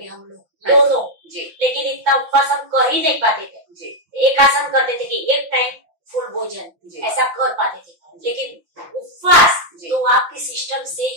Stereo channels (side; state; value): left; late; 5.8 ms